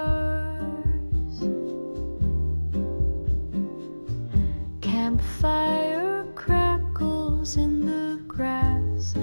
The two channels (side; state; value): both; inverted; correlation -1.00